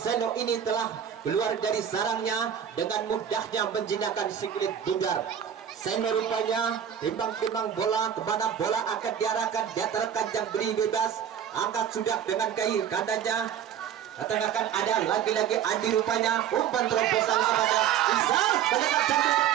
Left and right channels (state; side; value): quieter; left; 9.0 dB